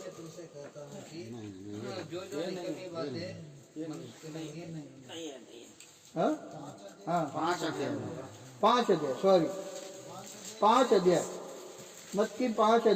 तुमसे कहता हूँ कि जो निकलनी बातें हाँ हाँ 5 अध्याय 5 अध्याय, सॉरी 5 अध्याय, मत्ती 5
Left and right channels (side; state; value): both; identical; correlation 1.00